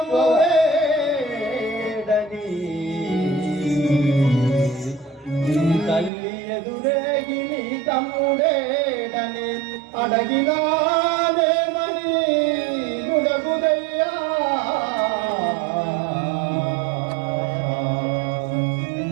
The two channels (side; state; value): left; drops out; at 6.1 s